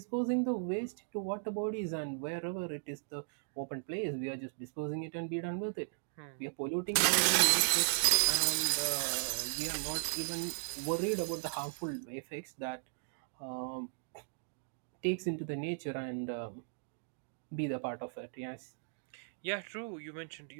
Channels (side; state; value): left; silent; digital silence